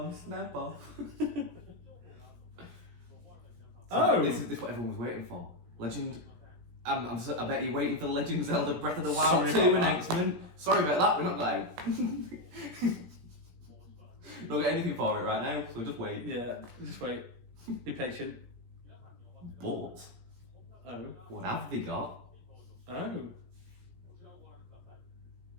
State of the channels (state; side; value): late; left; 17 ms